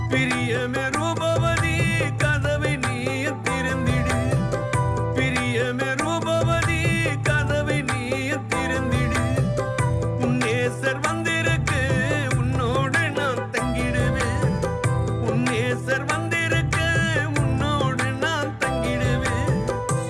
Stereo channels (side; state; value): both; identical; correlation 1.00